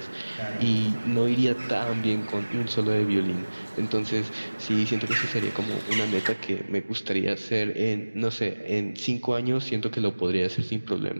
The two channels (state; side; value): inverted; both; correlation -1.00